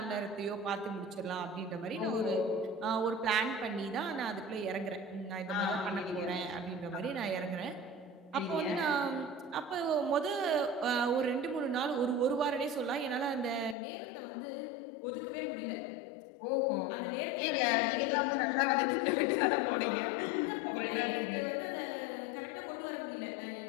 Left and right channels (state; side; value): drops out; right; at 13.8 s